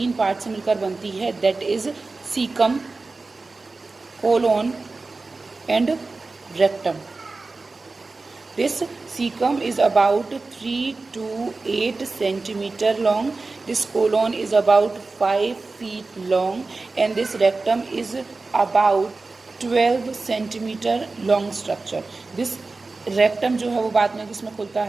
पार्ट से मिलकर बनती है, that is cecum, colon and rectum. This cecum is about 3 to 8 centimeter long. This colon is about 5 feet long, and this rectum is about 12 centimeter long structure. This rectum जो है वो बाद में किसमें खुलता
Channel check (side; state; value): left; quieter; 3.7 dB